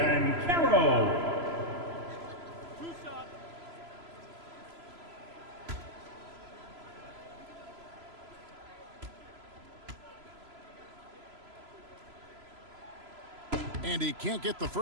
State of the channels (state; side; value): late; left; 3.0 ms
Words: to do. Banchero. And he can't get the